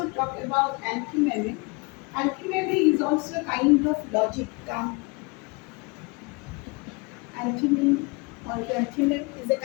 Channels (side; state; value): right; quieter; 29.0 dB